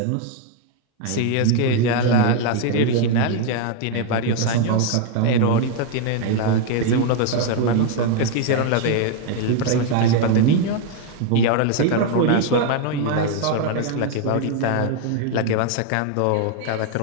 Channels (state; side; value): different; both; correlation 0.00